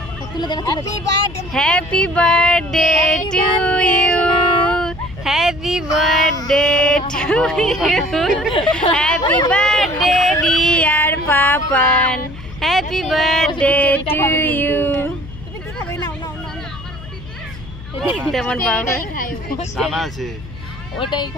তুলে দেখা। Happy birthday to you, happy birthday to you, happy birthday dear Papan, happy birthday to you. তেমন বাবা দানা আছে, ওটাই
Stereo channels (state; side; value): noise; left; hum, 15 dB below the sound